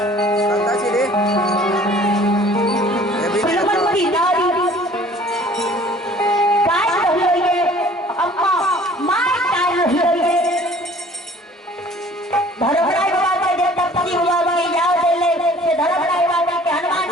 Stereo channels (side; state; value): both; normal; correlation 0.51